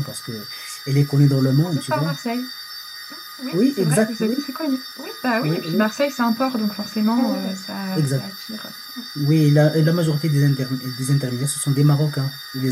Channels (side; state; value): both; identical; correlation 1.00